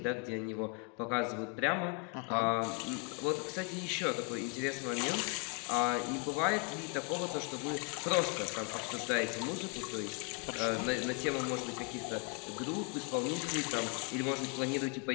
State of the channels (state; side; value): quieter; right; 34.3 dB